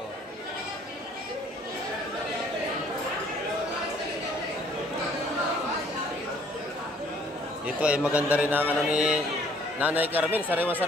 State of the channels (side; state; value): both; normal; correlation 0.60